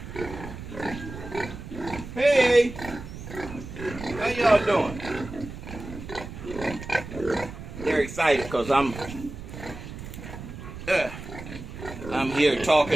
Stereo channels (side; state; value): right; noise; rumble, 11 dB below the sound